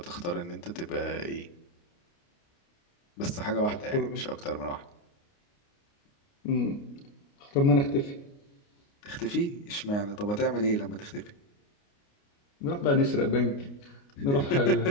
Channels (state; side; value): late; right; 29 ms